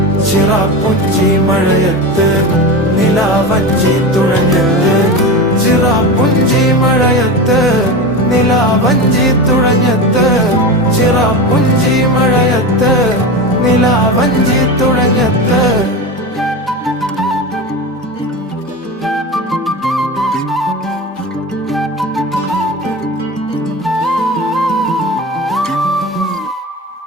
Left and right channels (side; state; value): both; normal; correlation 0.24